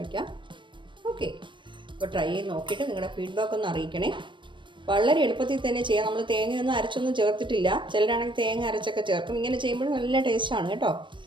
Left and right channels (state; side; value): late; left; 0.23 ms